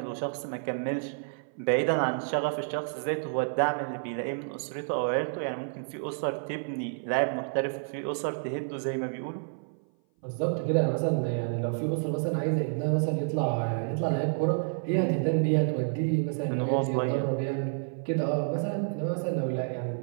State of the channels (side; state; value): left; silent; 56 dB below the other